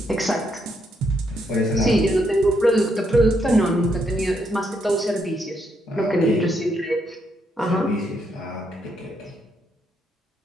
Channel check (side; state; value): both; normal; correlation 0.76